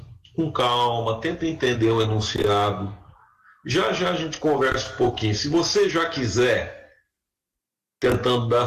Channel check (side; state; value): both; identical; correlation 1.00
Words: com calma, tenta entender o enunciado. Já já a gente conversa um pouquinho. Se você já quiser, tentando dar a